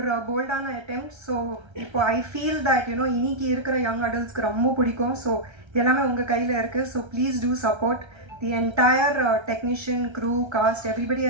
போல்டான அட்டெம்ப்ட். ஸோ இப்போ ஐ ஃபீல் தட் இன்னைக்கு இருக்கிற யங் அடல்ட்ஸ்க்கு ரொம்ப பிடிக்கும். ஸோ எல்லாமே உங்கள் கையில் இருக்குது. So please do support the entire technician, crew, cast, everybody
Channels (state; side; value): late; left; 1.3 ms